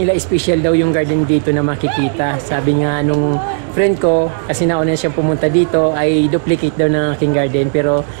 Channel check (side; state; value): left; silent; digital silence